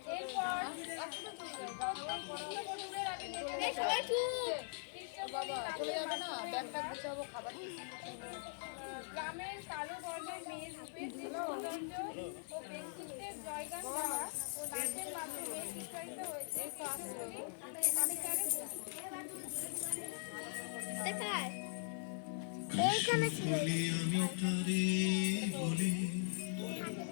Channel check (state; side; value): silent; right; 50 dB below the other